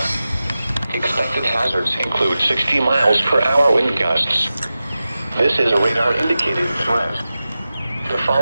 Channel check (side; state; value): both; inverted; correlation -0.94